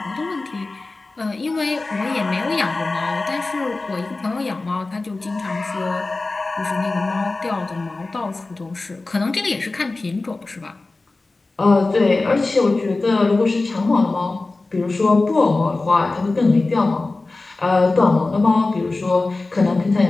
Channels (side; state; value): right; quieter; 3.3 dB